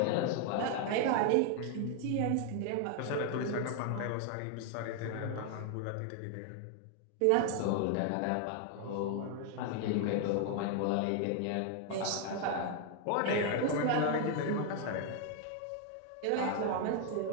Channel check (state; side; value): different; both; correlation 0.00